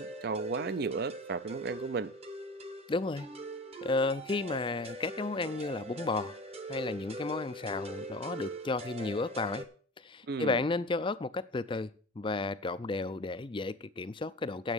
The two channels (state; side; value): normal; both; correlation 0.36